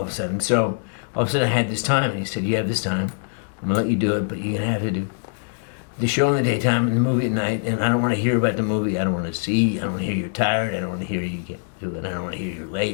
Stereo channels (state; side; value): silent; right; digital silence